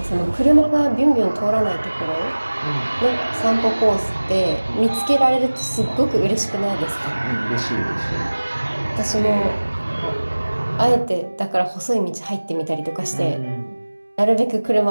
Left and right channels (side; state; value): both; inverted; correlation -1.00